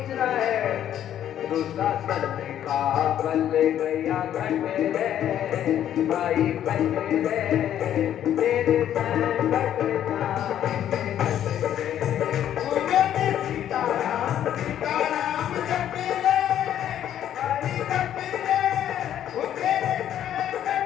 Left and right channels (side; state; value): right; quieter; 10.8 dB